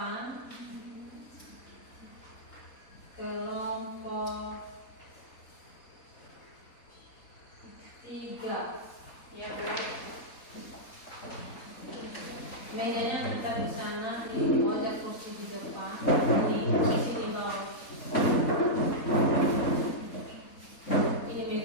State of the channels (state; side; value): late; right; 3.8 ms